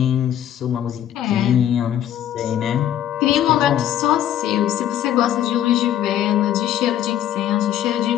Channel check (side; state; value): right; quieter; 11.2 dB